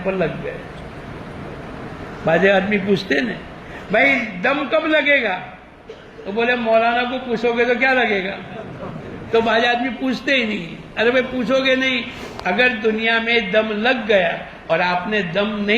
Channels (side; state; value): both; identical; correlation 1.00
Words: لگ گئے۔ بعض آدمی پوچھتے نا بھائی دم کب لگے گا؟ تو بولے مولانا کو پوچھو گے تو کیا لگے گا؟ تو بعض آدمی پوچھتے ہی نہیں۔ ارے بھائی پوچھو گے نہیں، اگر دنیا میں دم لگ گیا اور آپ نے دم